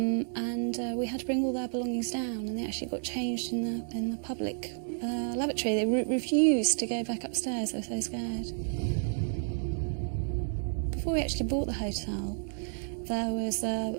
We had to bring all their belongings down, and they actually got changed in the public lavatory. They refused to go back upstairs. They were so scared. Before we actually bought the hotel, there was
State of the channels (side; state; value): left; silent; digital silence